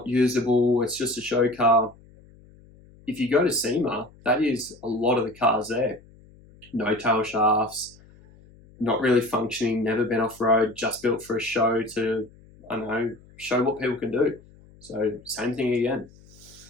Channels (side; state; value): left; noise; hum, 25 dB below the sound